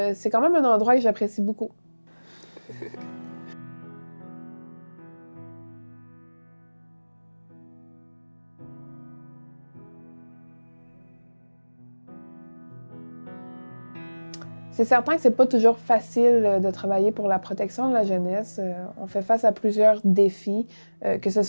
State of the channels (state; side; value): inverted; both; correlation -1.00